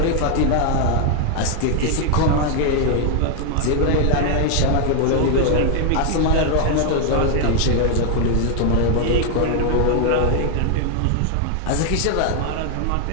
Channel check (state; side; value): different; both; correlation 0.00